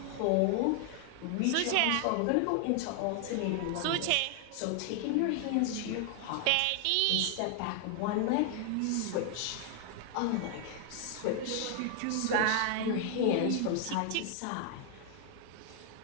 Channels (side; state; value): both; different; correlation 0.00